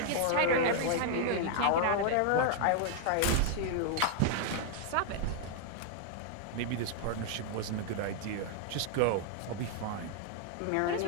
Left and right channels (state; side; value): different; both; correlation 0.00